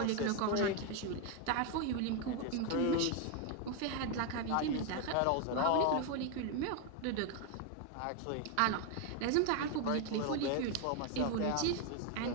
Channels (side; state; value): both; different; correlation 0.01